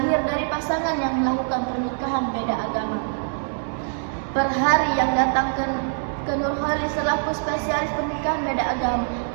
dari pasangan yang melakukan pernikahan beda agama. Per hari yang datang ke Nurholi selaku spesialis pernikahan beda agama,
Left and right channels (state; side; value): silent; left; digital silence